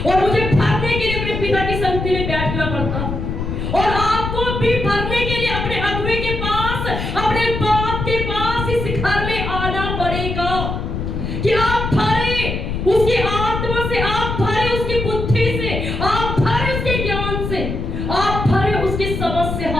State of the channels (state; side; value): noise; left; rumble, 3 dB below the sound